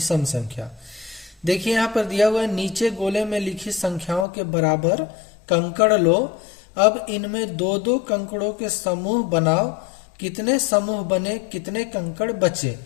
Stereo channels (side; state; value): right; drops out; at 4.2 s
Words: संख्या। देखिए यहाँ पर दिया हुआ है, नीचे गोले में लिखी संख्याओं के बराबर कंकड़ लो। अब इनमें दो दो कंकड़ों के समूह बनाओ। कितने समूह बने, कितने कंकड़ बचे,